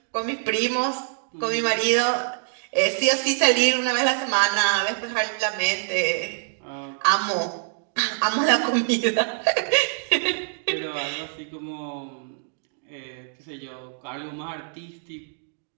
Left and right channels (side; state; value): left; silent; digital silence